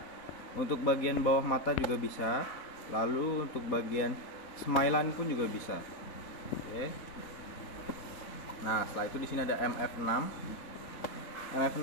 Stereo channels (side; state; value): right; late; 4.1 ms